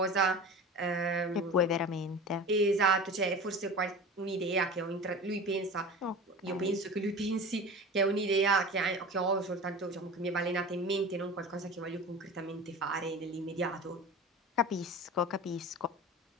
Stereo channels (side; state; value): both; normal; correlation 0.34